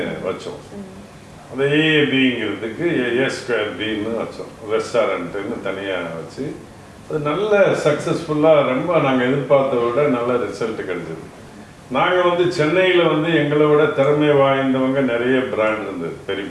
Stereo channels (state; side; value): identical; both; correlation 1.00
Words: வச்சோம். அந்த AABங்கிறதுக்கு A2Bன்னு வச்சோம். ரெஸ்டாரண்ட்டுன்னு தனியாக வச்சு அது நல்ல சக்ஸஸ்ஃபுல்லாக ரொம்ப நாங்கள் எதிர்பார்த்த விட நல்ல ரிசல்ட் கிடைச்சது. நாங்கள் வந்து சென்னையில் வந்து எங்களை விட திறமை வாய்ந்தவங்க நிறைய பிராண்ட் இருந்தது, பெரிய